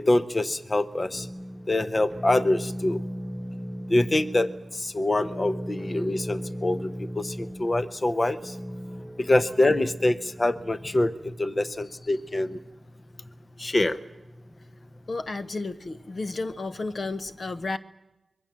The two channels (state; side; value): normal; both; correlation 0.97